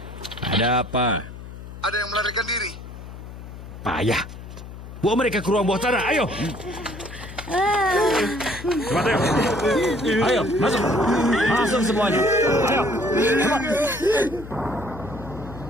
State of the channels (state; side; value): noise; left; hum, 13 dB below the sound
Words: Ada apa? Ada yang melarikan diri. Payah. Bawa mereka ke ruang bawah tanah. Ayo. Cepat, ayo. Ayo, masuk. Masuk semuanya. Ayo. Cepat.